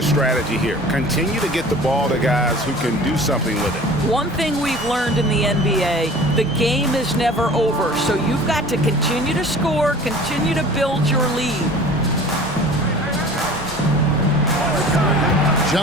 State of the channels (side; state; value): both; normal; correlation 0.44